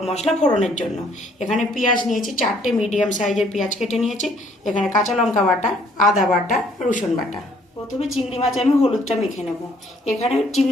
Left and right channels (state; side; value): normal; both; correlation 0.63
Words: মশলা ফোড়নের জন্য। এখানে পেঁয়াজ নিয়েছি 4টে মিডিয়াম সাইজের পেঁয়াজ কেটে নিয়েছি। এখানে কাঁচা লঙ্কা বাটা, আদা বাটা, রসুন বাটা। প্রথমে চিংড়ি মাছে আমি হলুদটা মেখে নেব। এখানে